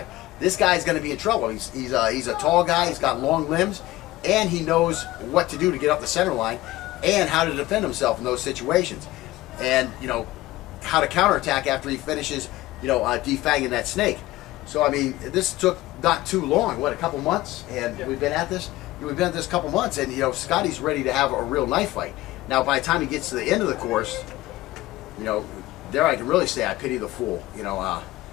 This guy's going to be in trouble. He's a tall guy, he's got long limbs, and he knows what to do to get up the center line and how to defend himself in those situations. And, you know, how to counterattack after he finishes, you know, defanging that snake. So, I mean, this took not too long, what, a couple months? And we've been at this a couple months, and, you know, Scotty's ready to have a real knife fight. Now, by the time he gets to the end of the course, you know, there I can really say I pity the fool. You know,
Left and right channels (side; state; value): right; quieter; 17.5 dB